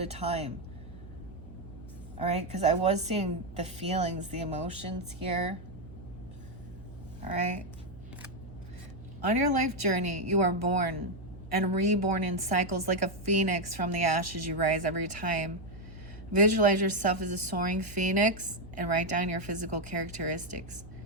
a time. All right, because I was seeing the feelings, the emotions here. All right. On your life journey, you are born and reborn in cycles like a phoenix. From the ashes you rise every time. Visualize yourself as a soaring phoenix and write down your physical characteristics.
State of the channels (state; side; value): noise; right; hum, 16 dB below the sound